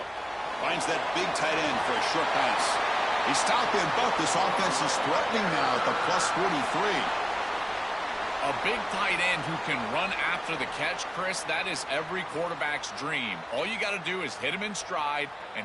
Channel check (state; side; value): identical; both; correlation 1.00